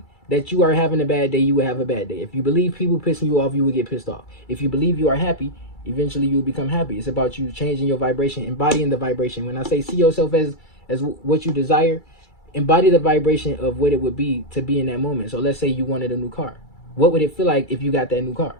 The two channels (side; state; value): right; late; 2.3 ms